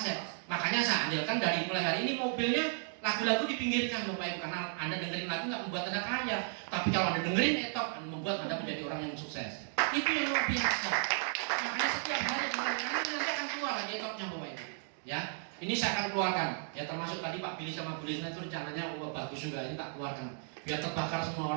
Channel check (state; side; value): silent; left; 55 dB below the other